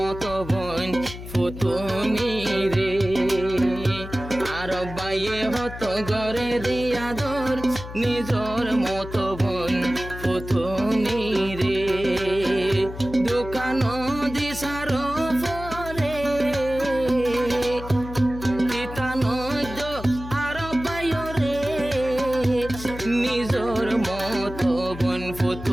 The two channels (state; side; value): noise; left; hum, 11 dB below the sound